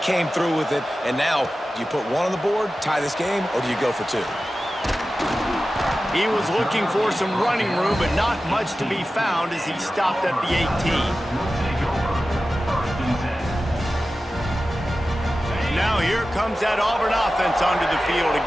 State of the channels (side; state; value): both; normal; correlation 0.94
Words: through with it. And now, do you put 1 on the board, tie this game, or do you go for 2? He was looking for some running room, but not much to be found as he stopped at the 18. Now here comes that Auburn offense onto the field